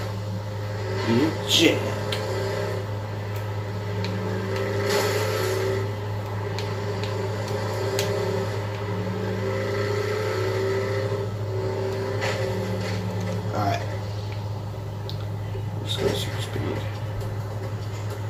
Jack. Alright. Let's go super speed.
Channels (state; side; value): identical; both; correlation 1.00